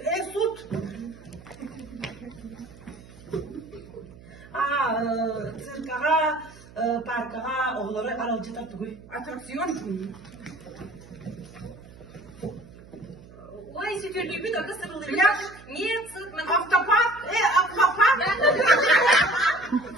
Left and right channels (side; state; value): right; noise; hum, 20 dB below the sound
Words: Сут. Циркага, паркага, оғылары аралжатар түгіл. Аттракцион. Ой, sütürgü bir dakika sarılır. Pляж? Нет, sırt мен. Автопарк? Аквапарк?